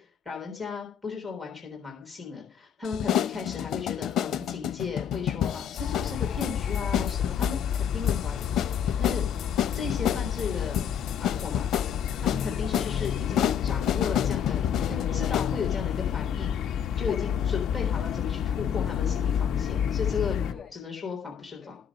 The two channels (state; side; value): quieter; right; 8.1 dB